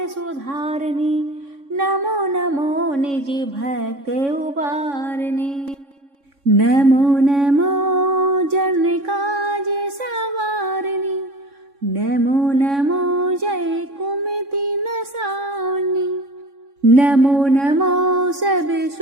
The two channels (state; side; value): late; left; 3.6 ms